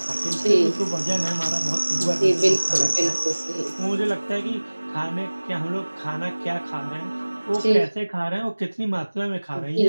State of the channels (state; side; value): inverted; both; correlation -1.00